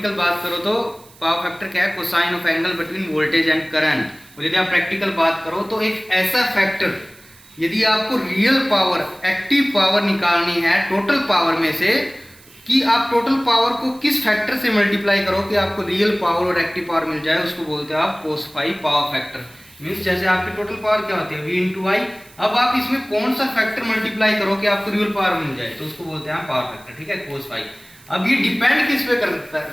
बात करो तो पावर फैक्टर क्या है? Cosine of angle between voltage and current. और यदि आप प्रैक्टिकल बात करो तो एक ऐसा फैक्टर, यदि आपको रियल पावर, एक्टिव पावर निकालनी है टोटल पावर में से, कि आप टोटल पावर को किस फैक्टर से मल्टीप्लाई करो कि आपको रियल पावर और एक्टिव पावर मिल जाए, उसको बोलते हैं आप cos phi power factor. Means जैसे आपकी टोटल पावर क्या होती है? V into I. अब आप इसमें कौन सा फैक्टर मल्टीप्लाई करो कि आपको रियल पावर मिल जाए, तो उसको बोलते हैं पावर फैक्टर। ठीक है, कोस फाई। अब ये डिपेंड किस पे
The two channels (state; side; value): noise; right; hiss, 25 dB below the sound